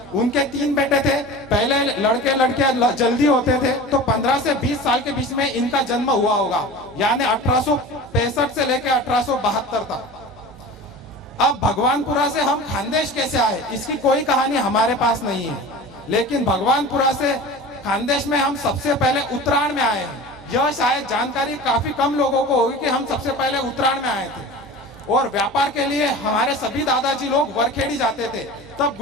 उनके 3 बेटे थे। पहले लड़के लड़के जल्दी होते थे तो 15 से 20 साल के बीच में इनका जन्म हुआ होगा, यानी 1865 से लेकर 1872 तक। अब भगवानपुरा से हम खानदेश कैसे आए, इसकी कोई कहानी हमारे पास नहीं है। लेकिन भगवानपुरा से खानदेश में हम सबसे पहले उत्तरायण में आए हैं। यह शायद जानकारी काफी कम लोगों को होगी कि हम सबसे पहले उत्तरायण में आए थे। और व्यापार के लिए हमारे सभी दादाजी लोग वरखेड़ी जाते थे। तब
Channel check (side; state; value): both; normal; correlation 0.35